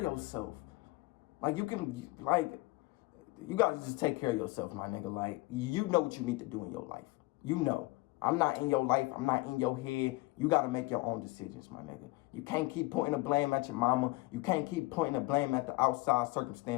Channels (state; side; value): quieter; right; 21.8 dB